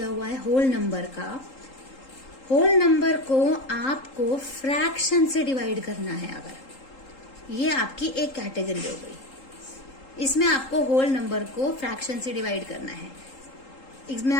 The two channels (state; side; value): late; right; 3.8 ms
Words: हुआ है होल नंबर का, होल नंबर को आपको फ्रैक्शन से डिवाइड करना है, अगर ये आपकी एक कैटेगरी हो गई। इसमें आपको होल नंबर को फ्रैक्शन से डिवाइड करना है। इसमें